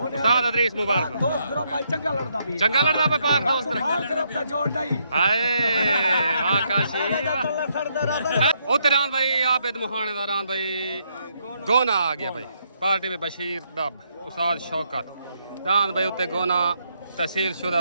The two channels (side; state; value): both; inverted; correlation -0.75